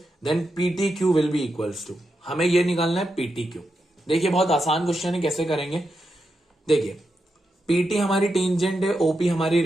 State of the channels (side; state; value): both; normal; correlation 0.86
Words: then PTQ will be equals to. हमें ये निकालना है PTQ। देखिए बहुत आसान क्वेश्चन है, कैसे करेंगे देखिए। PT हमारी टेंजेंट है, OP हमारी